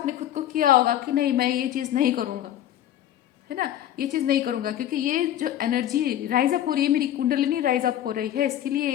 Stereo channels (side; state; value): right; quieter; 11.8 dB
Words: खुद को किया होगा कि नहीं मैं ये चीज़ नहीं करूँगा, है ना, ये चीज़ नहीं करूँगा क्योंकि ये जो एनर्जी राइज अप हो रही है, मेरी कुंडलिनी राइज अप हो रही है, इसके